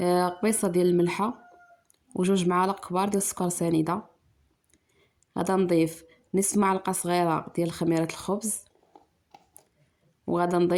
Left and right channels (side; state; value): both; identical; correlation 1.00